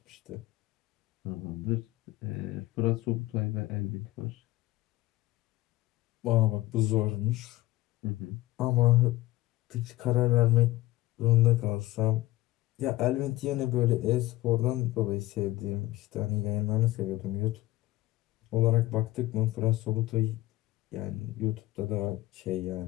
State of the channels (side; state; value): right; quieter; 17.6 dB